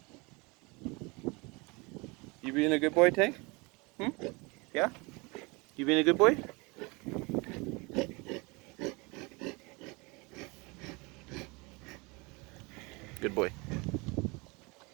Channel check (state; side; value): quieter; left; 27.2 dB